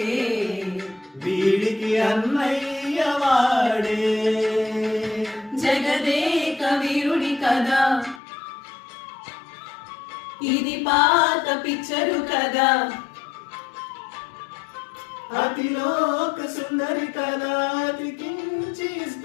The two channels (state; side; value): drops out; right; at 8.2 s